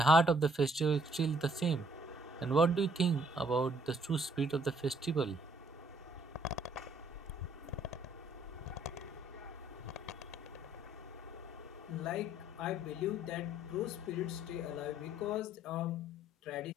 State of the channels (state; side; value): normal; both; correlation 0.64